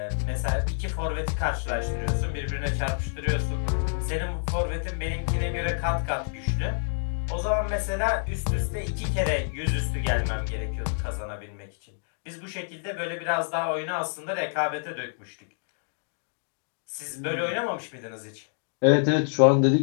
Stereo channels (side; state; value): right; silent; digital silence